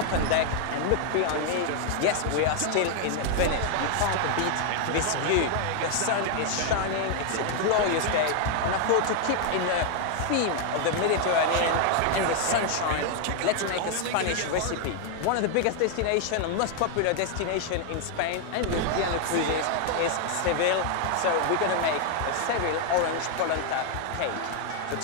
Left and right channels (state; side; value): different; both; correlation 0.00